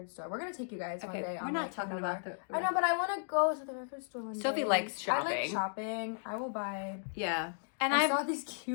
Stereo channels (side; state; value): right; silent; digital silence